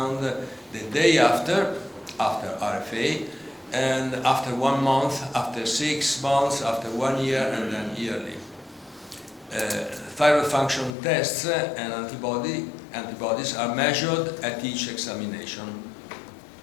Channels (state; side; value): drops out; right; at 10.9 s